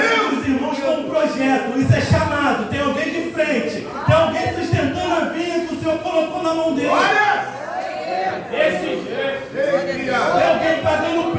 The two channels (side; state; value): both; identical; correlation 1.00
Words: temos irmãos com um projeto. Isso é chamado. Tem alguém de frente. Tem alguém sustentando a vinha que o Senhor colocou na mão dele. Tem alguém pagando